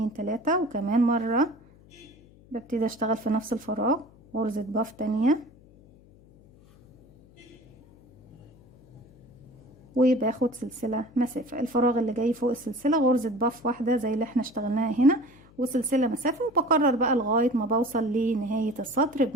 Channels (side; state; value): left; noise; hum, 25 dB below the sound